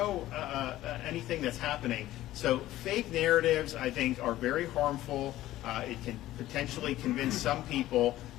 anything that's happening. So fake narratives, I think, are very harmful. It can potentially convince some people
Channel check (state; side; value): quieter; right; 15.0 dB